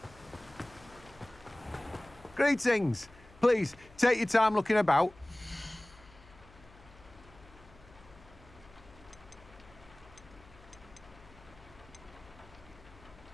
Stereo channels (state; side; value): noise; left; hum, 23 dB below the sound